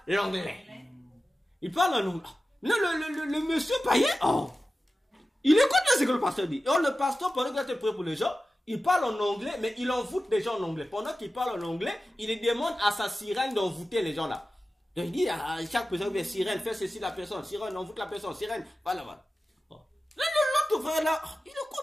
l'anglais, il parle en anglais. Le monsieur païen, oh, il écoute ce que le pasteur dit. Et le pasteur, pendant qu'il a prié pour les gens, il parle en anglais, mais il envoûte les gens en anglais. Pendant qu'il parle en anglais, il demande à sa sirène d'envoûter les gens là. Donc il dit à chaque personne, sirène, fais ceci la personne, sirène, envoûte la personne, sirène, voilà, voilà. Oh. L'autre frère là, il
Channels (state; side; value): normal; both; correlation 0.94